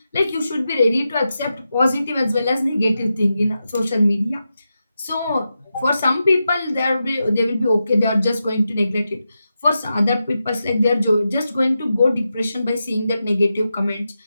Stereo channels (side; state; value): both; inverted; correlation -0.89